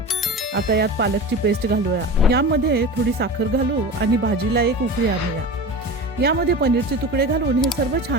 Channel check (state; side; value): normal; both; correlation 0.31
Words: आता यात पालकची पेस्ट घालूया. यामध्ये थोडी साखर घालू आणि भाजीला एक उकळी आणूया. यामध्ये पनीरचे तुकडे घालून हे सर्व